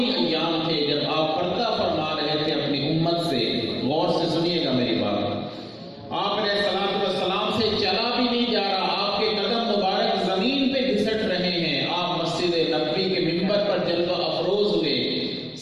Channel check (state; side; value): identical; both; correlation 1.00